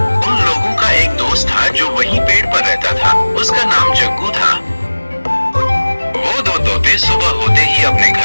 उन लोगों का एक दोस्त था जो वहीं पेड़ पर रहता था। उसका नाम जग्गू था। वो दो तोते सुबह होते ही अपने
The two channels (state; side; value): inverted; both; correlation -1.00